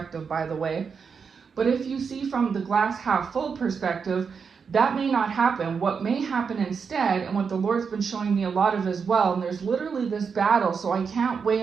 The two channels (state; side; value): quieter; left; 5.9 dB